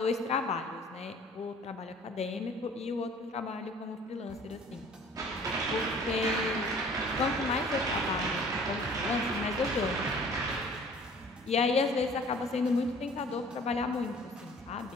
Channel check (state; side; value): normal; both; correlation 0.50